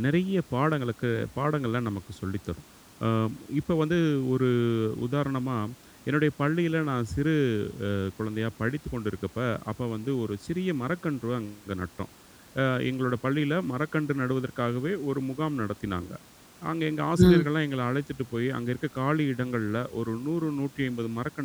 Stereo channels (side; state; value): both; identical; correlation 1.00